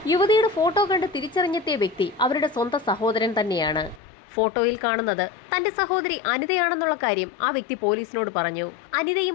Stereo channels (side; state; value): right; drops out; at 4.0 s